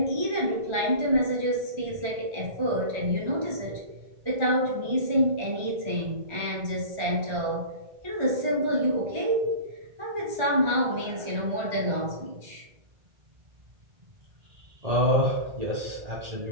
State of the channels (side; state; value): left; late; 1.4 ms